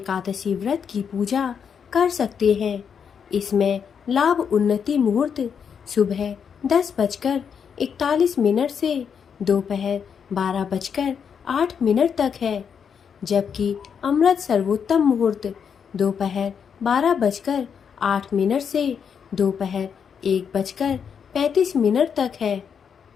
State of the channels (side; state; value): right; quieter; 7.1 dB